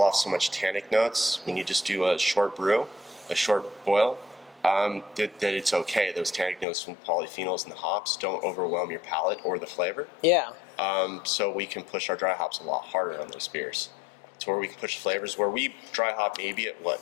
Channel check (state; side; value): drops out; right; at 6.7 s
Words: off so much tannic notes when you just do a short brew, a short boil, that it's okay. Those tannic notes from polyphenols and the hops don't overwhelm your palate or the flavor. Yeah. So we can push our dry hops a lot harder on those beers. To where we can push flavors where we dry hop maybe at